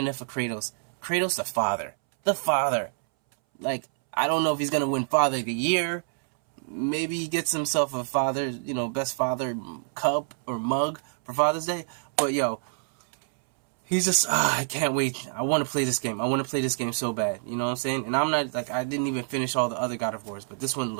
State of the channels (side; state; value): left; silent; 60 dB below the other